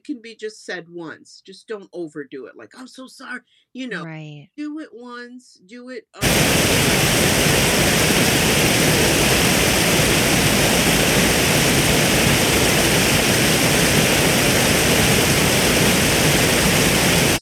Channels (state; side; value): identical; both; correlation 1.00